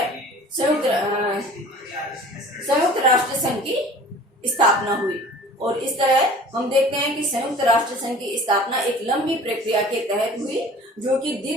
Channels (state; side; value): normal; both; correlation 0.45